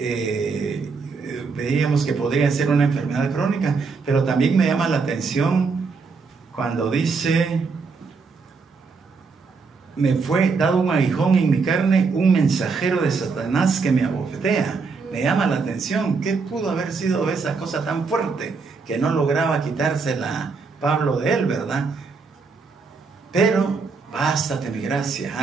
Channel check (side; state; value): left; quieter; 4.7 dB